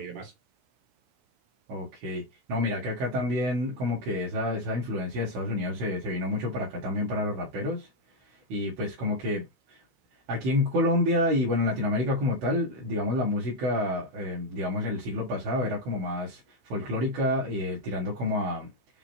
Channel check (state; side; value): late; left; 16 ms